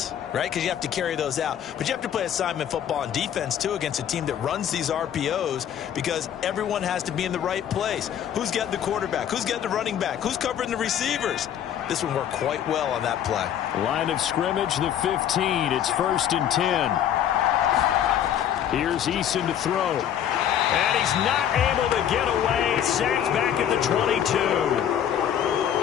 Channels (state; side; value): quieter; right; 9.9 dB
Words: right? Because you have to carry those out. But you have to play assignment football on defense, too, against a team that runs these RPOs because everyone has to be in the right place. Who's getting the quarterback? Who's getting the running back? Who's covering the receivers? This one worked quite well on that play. Line of scrimmage, the 15. It's 1st and 10. Here's Eason to throw. And he's not able to get away. Sacked back at the 22.